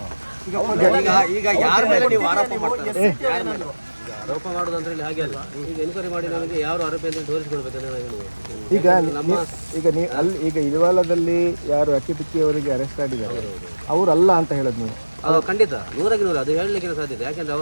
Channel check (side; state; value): both; inverted; correlation -1.00